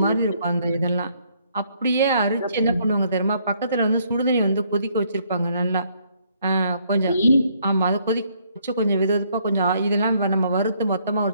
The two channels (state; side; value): inverted; both; correlation -0.68